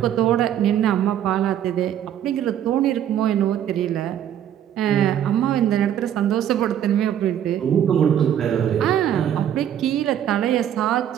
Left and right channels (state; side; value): quieter; left; 10.3 dB